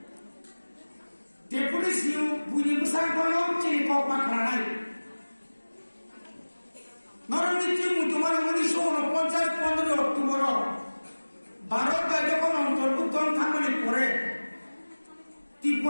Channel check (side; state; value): both; inverted; correlation -1.00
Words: Deputi siu bunyi besar kono, sini kau pakranai. Norang itu mutuman munisho no poncat pondro tumoro. Barat kaje kono terbuton thamani pore.